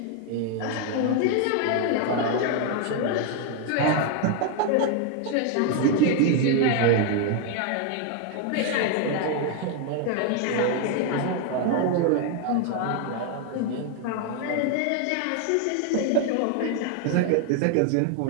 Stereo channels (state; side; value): different; both; correlation 0.01